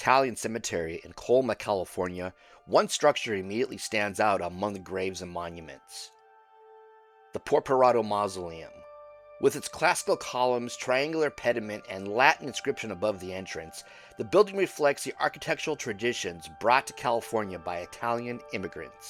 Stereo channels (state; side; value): identical; both; correlation 1.00